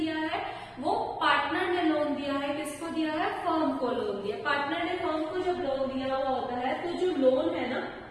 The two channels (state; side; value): identical; both; correlation 1.00